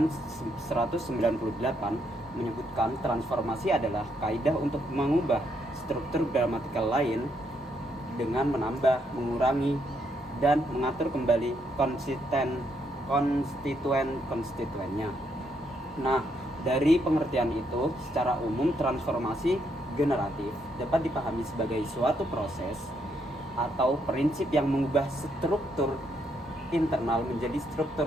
198 menyebutkan transformasi adalah kaidah untuk mengubah struktur gramatikal lain dengan menambah, mengurangi, dan mengatur kembali konstituen-konstituennya. Nah, dari pengertian itu, secara umum transformasi generatif dapat dipahami sebagai suatu proses atau prinsip yang mengubah struktur internal menjadi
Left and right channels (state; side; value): normal; both; correlation 0.75